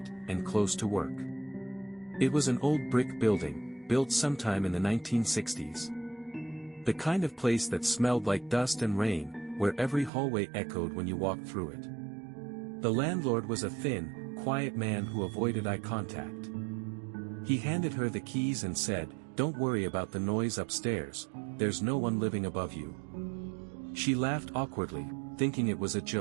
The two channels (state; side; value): drops out; left; at 10.1 s